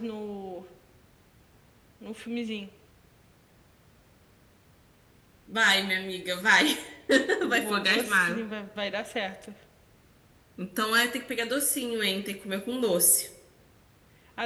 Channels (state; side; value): identical; both; correlation 1.00